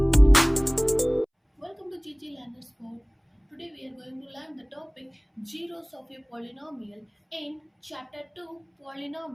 to GCSE. Today we are going to learn the topic zeros of a polynomial in chapter 2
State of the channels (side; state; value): both; identical; correlation 1.00